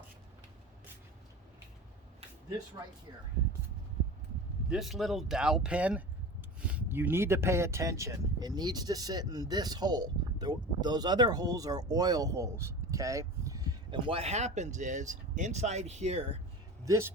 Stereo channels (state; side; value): normal; both; correlation 0.33